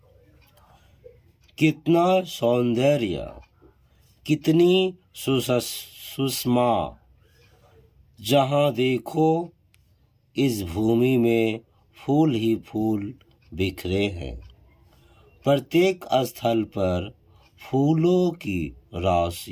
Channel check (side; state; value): both; identical; correlation 1.00